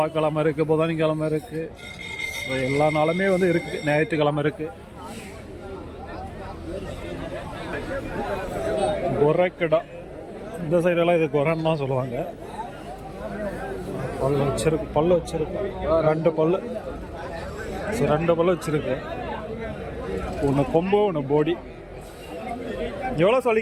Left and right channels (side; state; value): both; identical; correlation 1.00